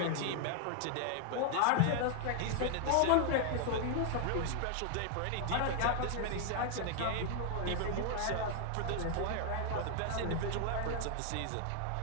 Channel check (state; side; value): different; both; correlation 0.00